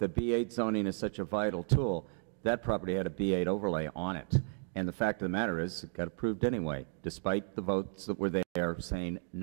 B8 zoning is such a vital tool, that property had a B8 overlay on it. And the fact of the matter is, it got approved anyway, despite the votes that were there saying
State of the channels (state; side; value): silent; left; 55 dB below the other